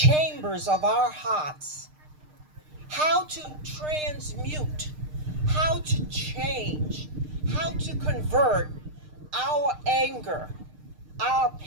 of our hearts, how to transmute, how to change, how to convert our anger, our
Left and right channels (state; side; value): late; left; 6.6 ms